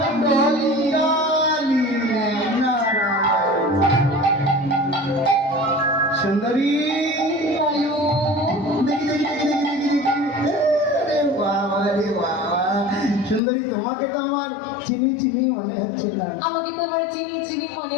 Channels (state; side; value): drops out; right; at 13.4 s